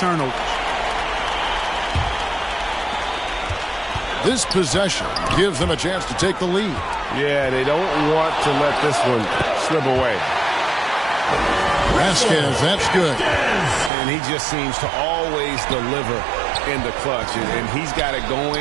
This possession gives them a chance to take the lead. Yeah, they don't want to let this one slip away. Vasquez, that's good. And he just seems to always deliver in the clutch, and he's got it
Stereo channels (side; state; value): left; drops out; at 13.9 s